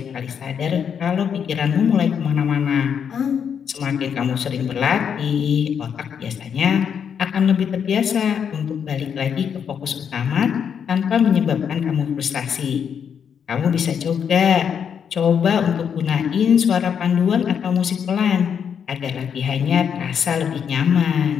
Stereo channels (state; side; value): quieter; right; 7.6 dB